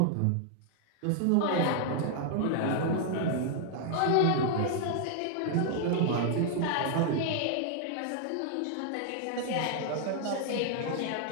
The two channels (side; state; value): both; different; correlation 0.00